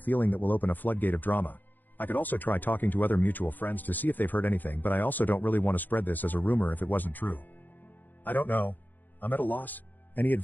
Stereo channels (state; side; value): late; right; 0.086 ms